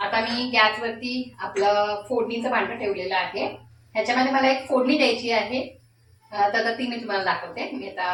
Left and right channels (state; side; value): identical; both; correlation 1.00